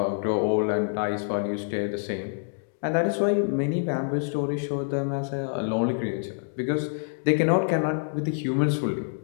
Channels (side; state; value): right; silent; digital silence